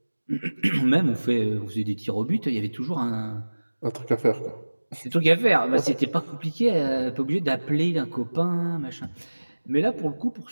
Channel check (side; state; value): both; inverted; correlation -1.00